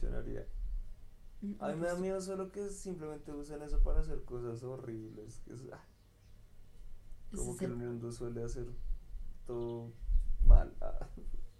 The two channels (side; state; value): both; identical; correlation 1.00